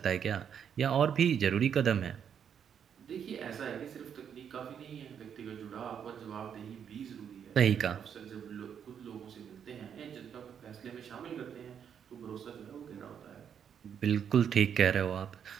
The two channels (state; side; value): quieter; left; 8.1 dB